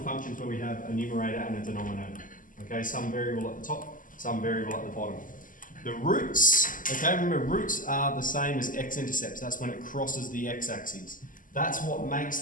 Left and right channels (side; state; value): right; late; 0.39 ms